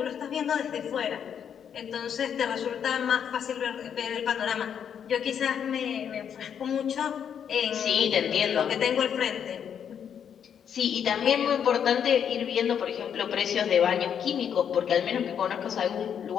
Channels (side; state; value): right; quieter; 8.2 dB